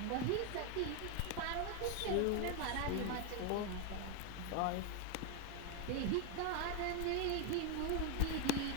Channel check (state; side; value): different; both; correlation 0.01